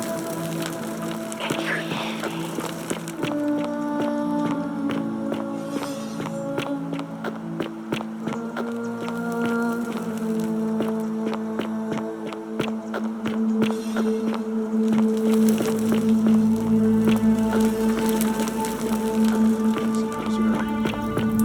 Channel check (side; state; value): both; identical; correlation 1.00